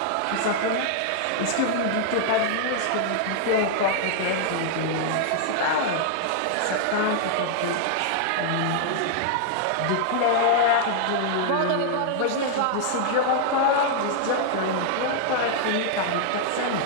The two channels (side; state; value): both; different; correlation -0.01